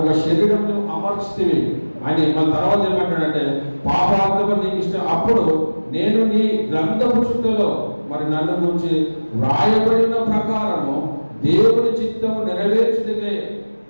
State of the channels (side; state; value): both; inverted; correlation -1.00